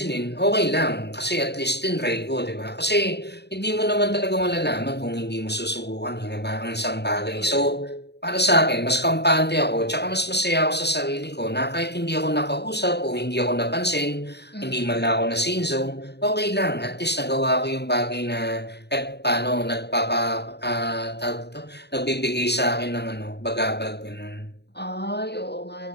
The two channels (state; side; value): late; right; 0.49 ms